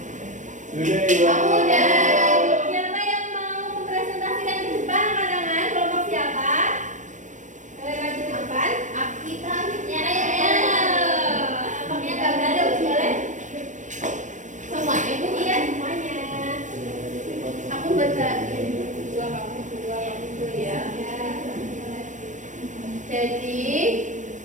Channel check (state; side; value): late; left; 0.36 ms